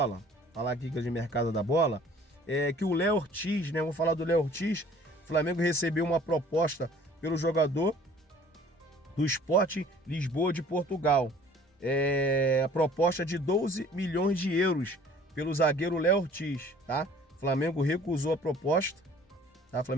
Falar aqui de mercado da bola. Que o Léo Ortiz, né? Vamos falar do Léo Ortiz. O Flamengo recebeu uma proposta pelo jogador do Sporting Lisboa de Portugal. A proposta de 12 milhões de euros pelo zagueiro Léo Ortiz, tá? O Flamengo recusou a proposta, tá? O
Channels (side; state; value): both; normal; correlation 0.52